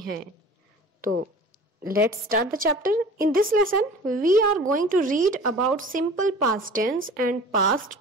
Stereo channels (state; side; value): normal; both; correlation 0.42